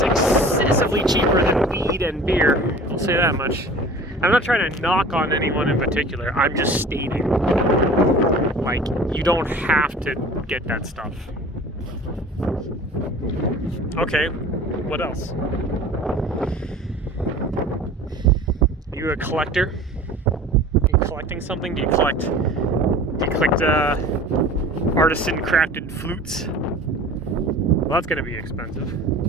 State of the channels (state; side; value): normal; both; correlation 0.42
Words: excessively cheaper than weed and beer. I'll say that much. I'm not trying to knock on anyone in particular. I'm just stating. Like, you don't have to get that stuff. Okay, what else? Are you a collector? Are you collecting something? Do you collect You clicked artisan crafted flutes. Well, that's going to be expensive.